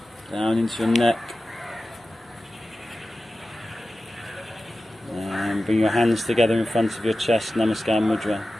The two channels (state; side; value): normal; both; correlation 0.94